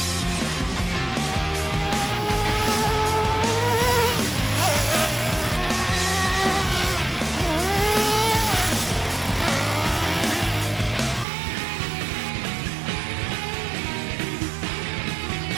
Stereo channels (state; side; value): drops out; left; at 11.2 s